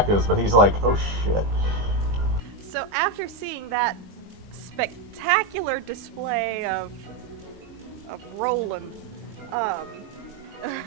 but he's like, oh shit. So after seeing that spectacular display of Roland, I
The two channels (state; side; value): late; left; 20 ms